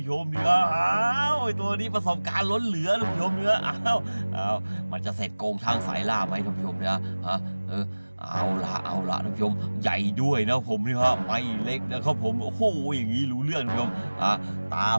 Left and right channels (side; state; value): both; inverted; correlation -1.00